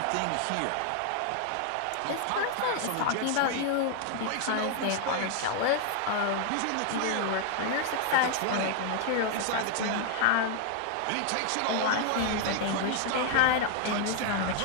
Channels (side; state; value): both; different; correlation 0.00